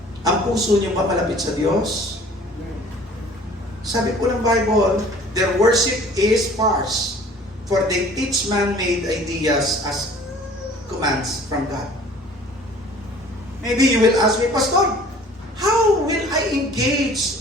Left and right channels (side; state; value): both; normal; correlation 0.50